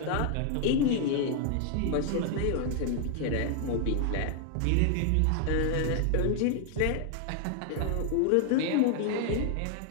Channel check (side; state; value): both; different; correlation 0.00